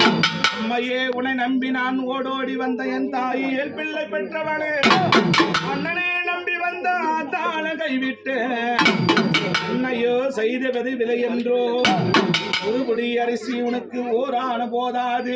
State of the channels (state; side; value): identical; both; correlation 1.00